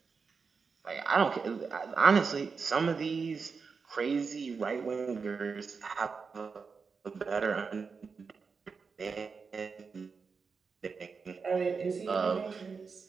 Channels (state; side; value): quieter; left; 5.2 dB